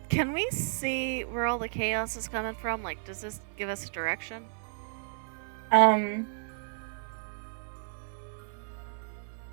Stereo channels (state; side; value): silent; left; 56 dB below the other